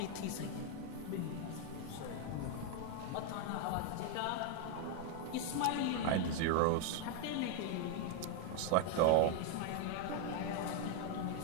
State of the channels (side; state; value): both; different; correlation 0.01